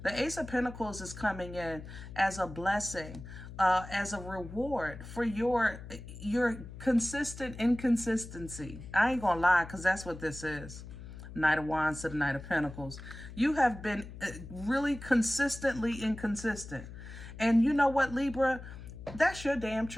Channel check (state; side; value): noise; left; hum, 13 dB below the sound